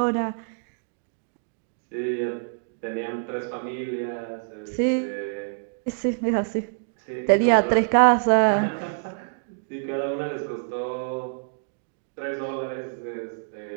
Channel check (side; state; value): left; silent; digital silence